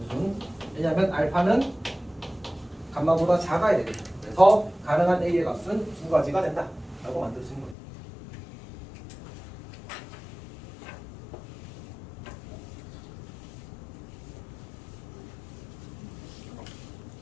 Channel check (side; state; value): right; drops out; at 7.8 s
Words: 왜냐하면 알파는 감마보다 작아야 되거든. 그래서 가능한 a의 값은 두 가지가 된다 라고 만들 수 있는 거예요.